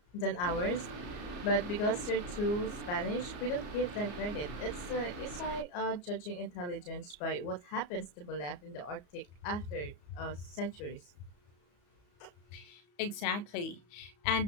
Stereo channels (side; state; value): right; late; 34 ms